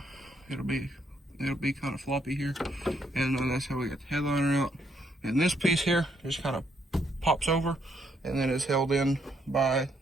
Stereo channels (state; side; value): normal; both; correlation 0.73